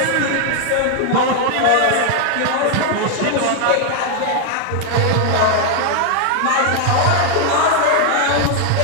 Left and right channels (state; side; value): different; both; correlation 0.00